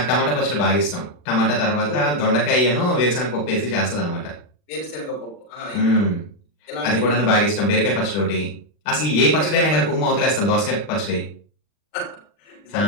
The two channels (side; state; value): right; late; 40 ms